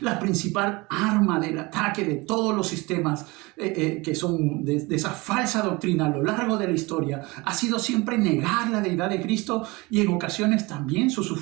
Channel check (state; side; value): quieter; left; 24.0 dB